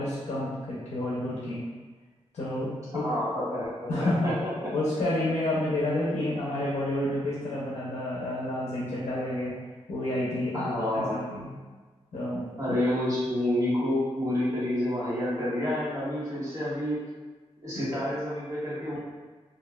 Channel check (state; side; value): normal; both; correlation 0.75